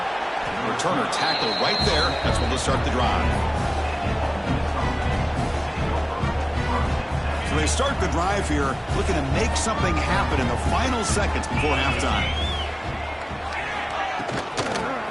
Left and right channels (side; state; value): both; identical; correlation 1.00